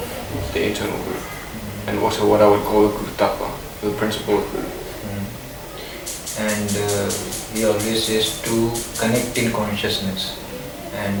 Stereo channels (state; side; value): identical; both; correlation 1.00